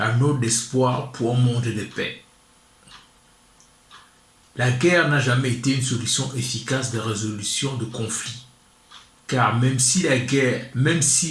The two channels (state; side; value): identical; both; correlation 1.00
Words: note d'espoir pour un monde de paix. La guerre n'a jamais été une solution efficace de résolution de conflits. Car même si